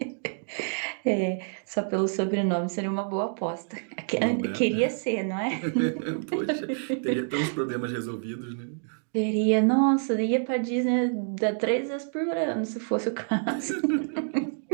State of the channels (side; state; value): left; silent; digital silence